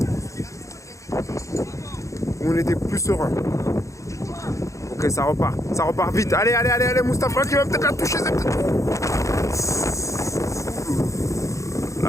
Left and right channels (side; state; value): right; late; 0.15 ms